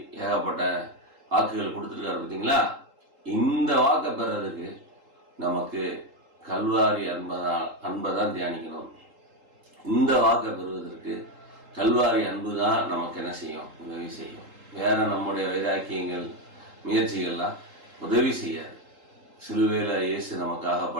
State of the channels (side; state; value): left; late; 3.8 ms